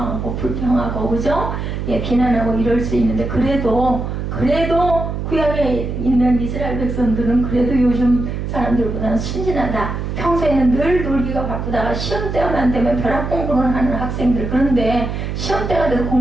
불평하고, 그죠? 예, 비난하고 이럴 수 있는데, 그래도 구약에 있는 이스라엘 백성들은 그래도 요즘 사람들보다는 순진하다. 평소에는 늘 놀기가 바쁘다가 시험 때만 되면 벼락 공부를 하는 학생들, 그런데 시험 때가 돼도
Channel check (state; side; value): noise; right; hum, 4 dB below the sound